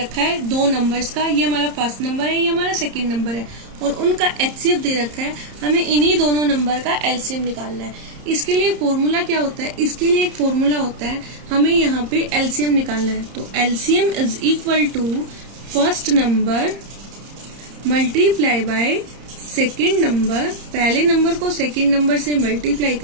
है 2 नंबर्स का। ये हमारा फर्स्ट नंबर है, ये हमारा सेकंड नंबर है और उनका HCF दे रखा है। हमें इन्हीं दोनों नंबर का LCM निकालना है। इसके लिए फॉर्मूला क्या होता है, इसके लिए एक फॉर्मूला होता है, हमें यहाँ पे LCM निकालना है। तो LCM is equal to first number multiply by second number. पहले नंबर को सेकेंड नंबर से मल्टीप्लाई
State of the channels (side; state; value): left; late; 30 ms